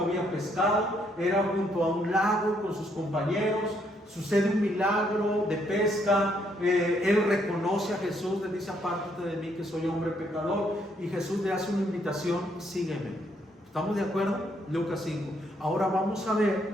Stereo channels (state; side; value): normal; both; correlation 0.72